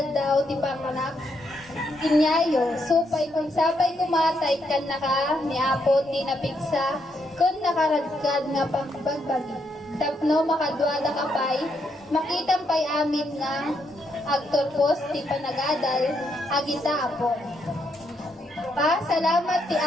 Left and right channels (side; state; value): both; normal; correlation 0.77